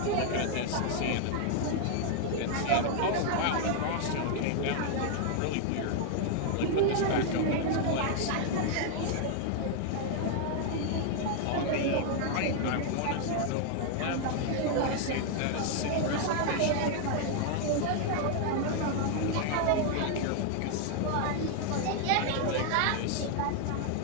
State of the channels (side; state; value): both; different; correlation 0.00